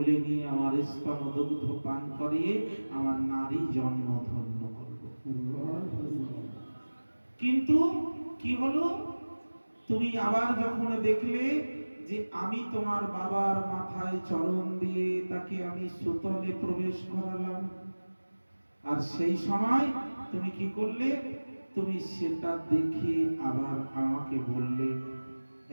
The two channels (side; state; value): both; inverted; correlation -1.00